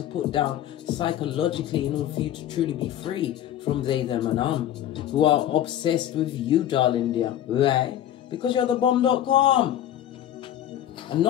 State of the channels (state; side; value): quieter; right; 11.6 dB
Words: put down psychologically in order for you to truly be free from they, them, and who are obsessed with you, darling dear. Right? Because you're the bomb.com. And